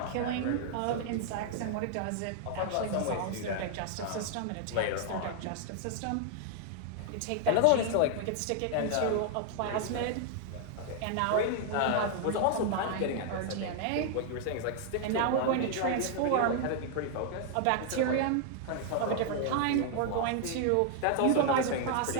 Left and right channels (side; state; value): both; different; correlation 0.00